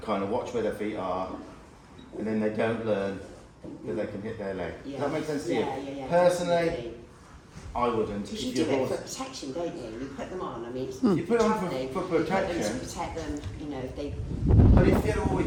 kind of watch where their feet are, and then they don't learn that they can hit their leg. Yeah. Does that make sense to Yeah, you? yeah, yeah, Personally, definitely. I wouldn't. Because you If do your it horse- for protection, don't you? You put them on. I mean, it's You put 'em on travelling, for you put them protection. to protect them. You know, if they, But if you've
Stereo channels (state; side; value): identical; both; correlation 1.00